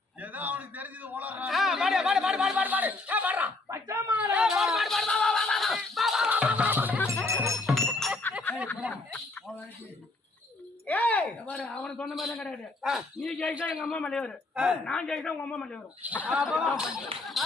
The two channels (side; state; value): right; quieter; 3.2 dB